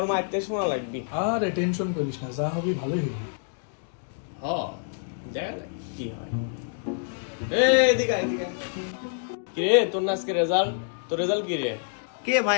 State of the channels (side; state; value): right; silent; digital silence